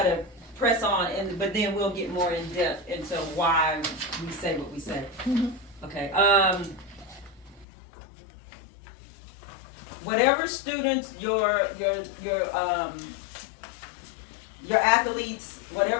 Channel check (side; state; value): right; drops out; at 7.7 s